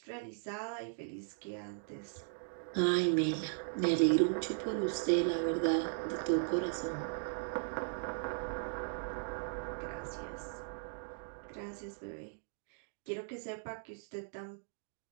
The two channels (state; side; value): silent; left; digital silence